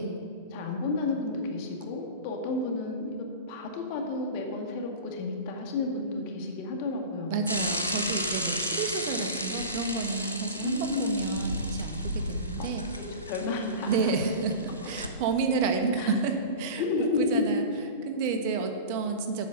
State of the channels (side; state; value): both; inverted; correlation -0.31